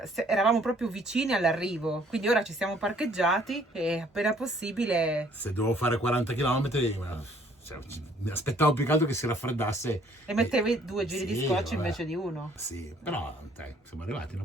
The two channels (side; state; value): both; normal; correlation 0.61